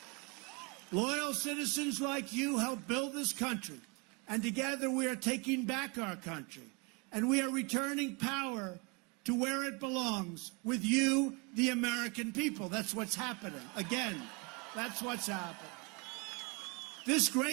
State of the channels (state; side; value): quieter; left; 29.9 dB